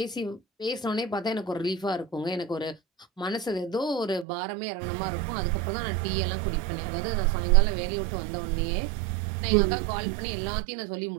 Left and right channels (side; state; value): left; drops out; at 4.2 s